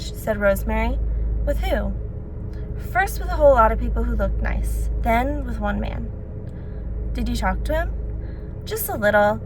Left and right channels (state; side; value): identical; both; correlation 1.00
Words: said Rosemary. With who? First with a whole lot of people who looked nice, then with one man. Did you talk to him? Just a little,